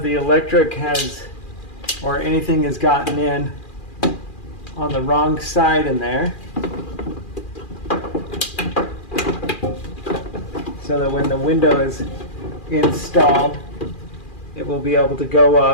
the electric has or anything has gotten in on the wrong side in there, so that when the window is installed, it will be able to go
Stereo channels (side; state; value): right; late; 2.4 ms